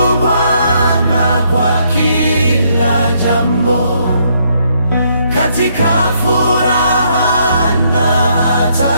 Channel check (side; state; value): both; inverted; correlation -0.71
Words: Bwana kwa kila jambo, katika furaha na